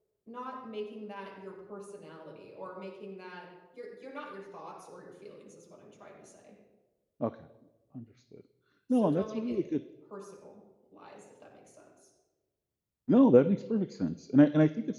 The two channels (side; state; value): both; identical; correlation 1.00